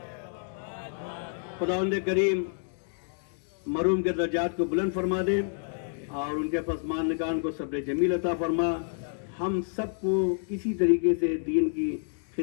خداوند کریم مرحوم کے درجات کو بلند فرما دے اور ان کے پسماندگان کو صبر جمیل عطا فرما. ہم سب کو اسی طریقے سے دین کی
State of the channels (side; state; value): right; silent; digital silence